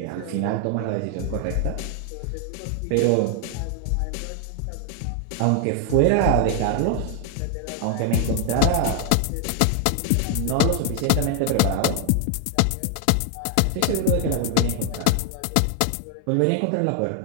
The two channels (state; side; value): different; both; correlation 0.00